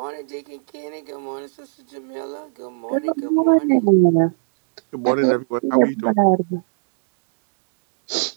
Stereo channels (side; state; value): left; silent; digital silence